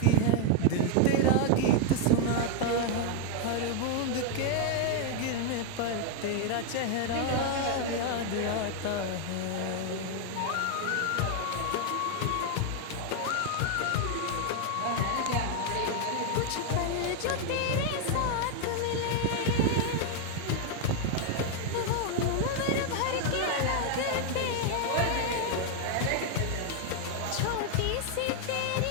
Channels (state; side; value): different; both; correlation 0.00